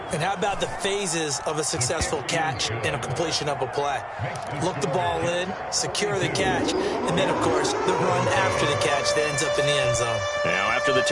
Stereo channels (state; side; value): identical; both; correlation 1.00